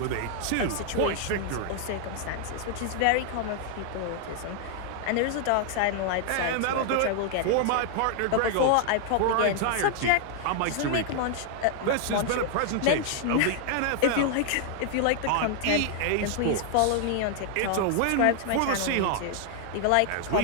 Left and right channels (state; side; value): different; both; correlation 0.00